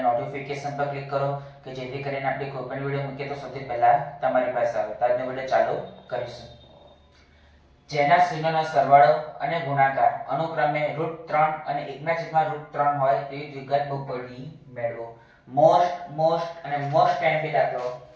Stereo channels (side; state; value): both; identical; correlation 1.00